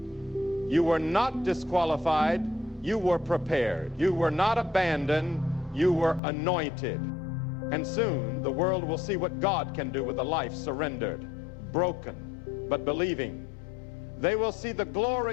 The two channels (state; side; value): drops out; right; at 6.2 s